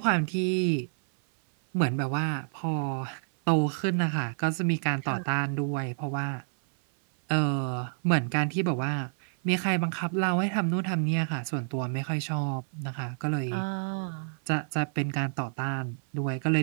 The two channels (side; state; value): left; silent; 56 dB below the other